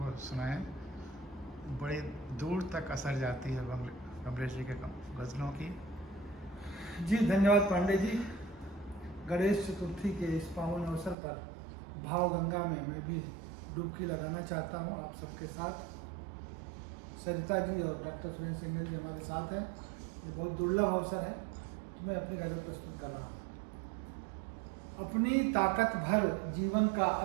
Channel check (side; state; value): left; drops out; at 11.2 s